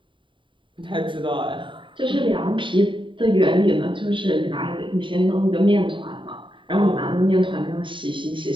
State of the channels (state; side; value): late; left; 0.24 ms